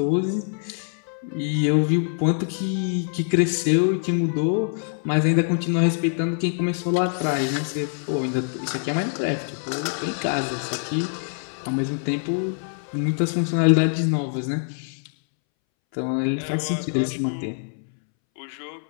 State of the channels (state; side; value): silent; right; 62 dB below the other